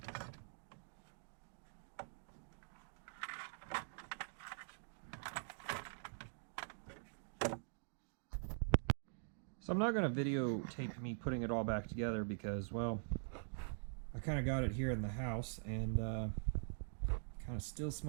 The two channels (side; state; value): left; silent; digital silence